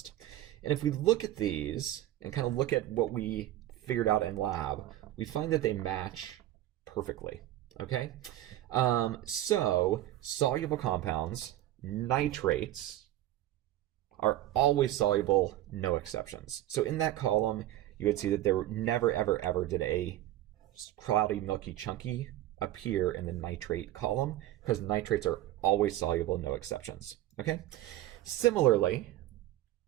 And if we look at these and kind of look at what we figured out in lab, we find that they match perfectly. Okay, so soluble compounds, nitrates, are always soluble, no exceptions. So in that column, you would see that there never, ever, ever did a cloudy, milky, chunky appear in the nitrate column, because nitrates are always soluble, no exceptions. Okay, similarly,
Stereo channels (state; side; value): quieter; left; 14.2 dB